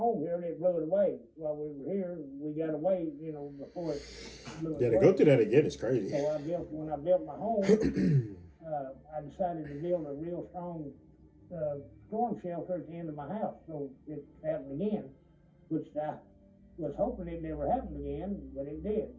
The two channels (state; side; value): identical; both; correlation 1.00